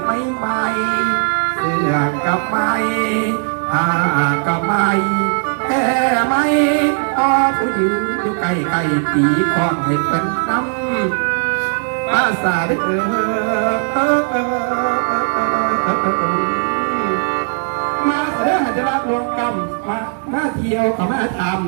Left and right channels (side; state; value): left; silent; 57 dB below the other